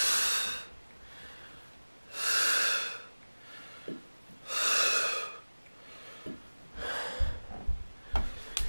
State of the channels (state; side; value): inverted; both; correlation -1.00